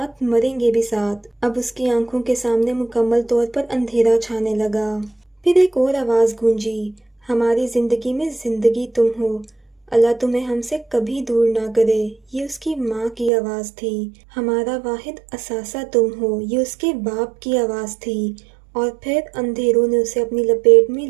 مریں گے بھی ساتھ۔ اب اس کی آنکھوں کے سامنے مکمل طور پر اندھیرا چھانے لگا۔ پھر ایک اور آواز گونجی، ہماری زندگی میں زندگی تم ہو، اللہ تمہیں ہم سے کبھی دور نہ کرے۔ یہ اس کی ماں کی آواز تھی۔ ہمارا واحد اثاثہ تم ہو، یہ اس کے باپ کی آواز تھی۔ اور پھر اندھیروں نے اسے اپنی لپیٹ میں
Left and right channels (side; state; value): left; drops out; at 13.3 s